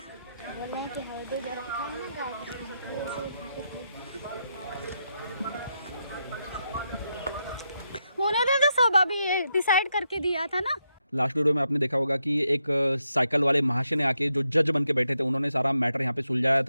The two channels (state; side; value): inverted; both; correlation -0.83